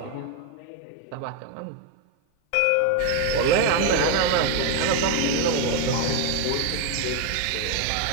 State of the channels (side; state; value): both; different; correlation 0.01